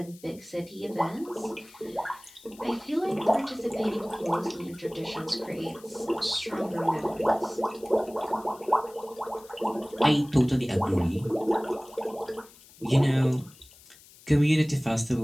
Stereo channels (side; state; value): left; noise; hiss, 23 dB below the sound